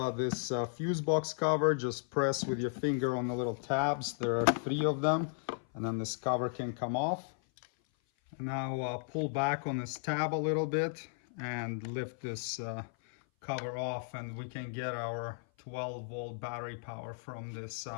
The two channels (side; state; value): right; silent; 55 dB below the other